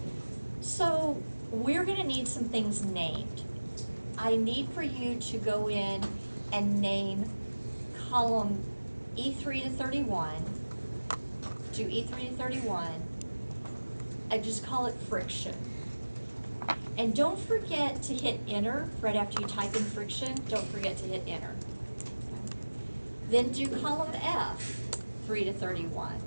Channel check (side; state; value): both; inverted; correlation -1.00